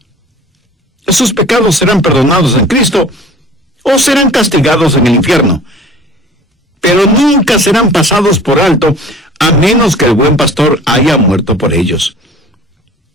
Esos pecados serán perdonados en Cristo o serán castigados en el infierno, pero nunca serán pasados por alto a menos que el buen pastor haya muerto por ellos.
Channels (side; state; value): both; normal; correlation 0.45